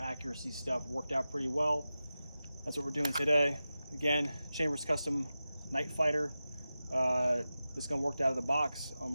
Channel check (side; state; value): both; inverted; correlation -0.93